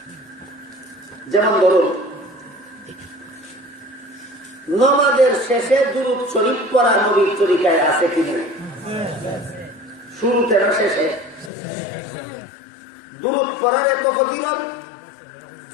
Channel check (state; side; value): drops out; right; at 11.5 s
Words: যেমন ধরুন, নামাজের শেষে দুরূদ শরীফ পড়া নবীর তরিকায় আছে কিনা? শুরুতে না শেষে? দুরূদ পড়ার এত ফজিলত।